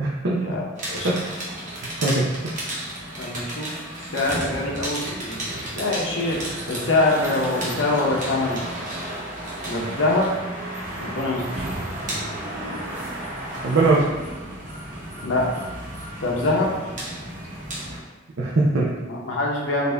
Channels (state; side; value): normal; both; correlation 0.24